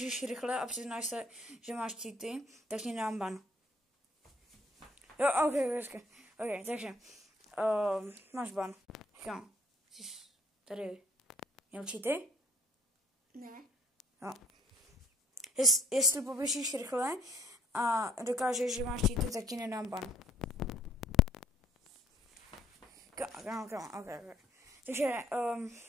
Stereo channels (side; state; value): both; normal; correlation 0.60